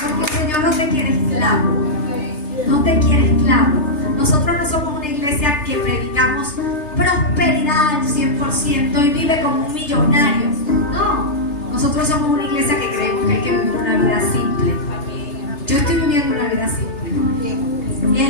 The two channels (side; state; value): right; late; 3.3 ms